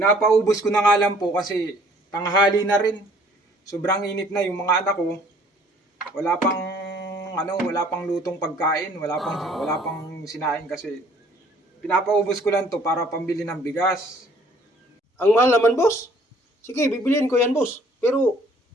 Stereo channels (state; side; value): normal; both; correlation 0.57